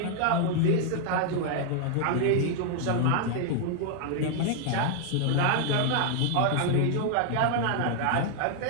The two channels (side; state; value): both; different; correlation 0.00